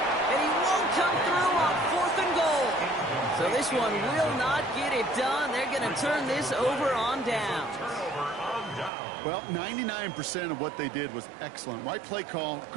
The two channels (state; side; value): drops out; left; at 8.9 s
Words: And he won't come through on 4th and goal. So this one will not get it done. They're going to turn this over on down. Well, 99% of what they did was excellent. Right play call,